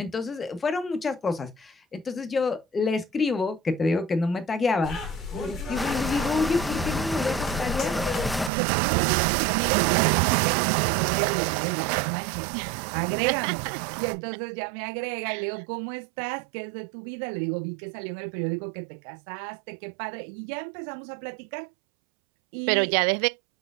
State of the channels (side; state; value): left; drops out; at 8.5 s